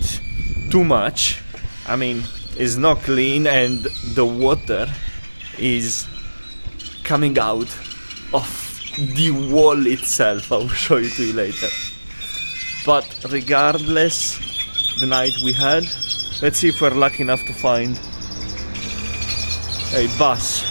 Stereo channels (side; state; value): both; inverted; correlation -1.00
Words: too much. I mean, it's not clean and the water is coming out of the wall itself. I will show it to you later. But regardless, the night we had, let's see if we're lucky enough to find a bus.